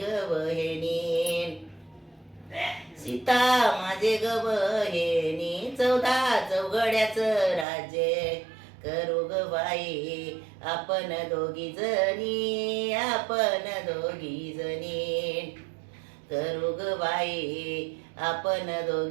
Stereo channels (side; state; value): left; drops out; at 7.7 s